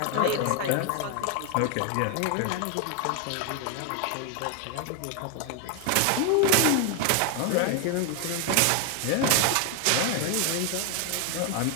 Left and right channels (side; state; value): both; different; correlation 0.01